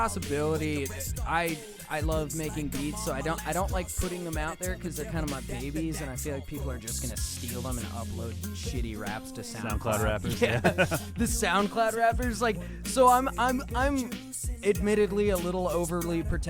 I love making beats, so I don't like putting them out there because they're kind of my babies, and I feel like people are just gonna steal them and upload shitty raps to SoundCloud rappers. Yeah, the SoundCloud rappers. Like, so I'm admittedly a little overly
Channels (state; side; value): identical; both; correlation 1.00